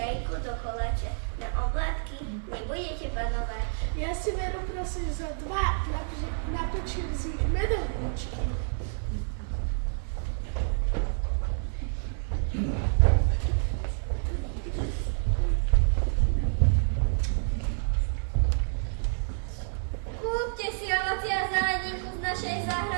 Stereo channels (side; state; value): left; silent; digital silence